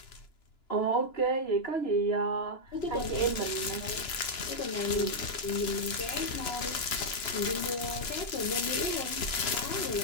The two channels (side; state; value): right; late; 2.9 ms